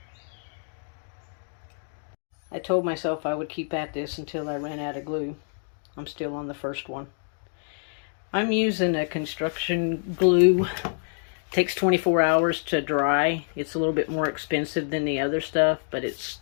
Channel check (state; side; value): silent; right; digital silence